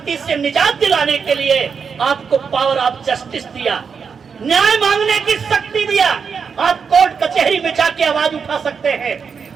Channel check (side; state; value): left; quieter; 6.1 dB